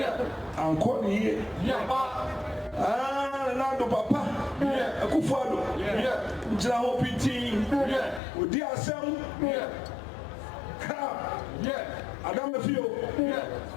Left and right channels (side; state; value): right; drops out; at 8.2 s